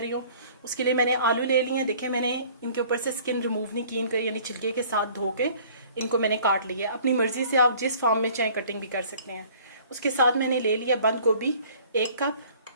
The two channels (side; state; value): both; inverted; correlation -0.52